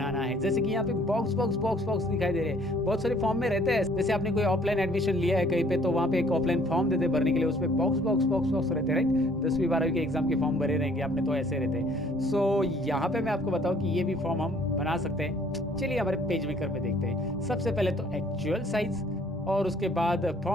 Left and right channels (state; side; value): normal; both; correlation 0.58